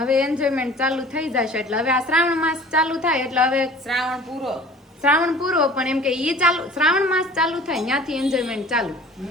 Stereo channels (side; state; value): both; normal; correlation 0.46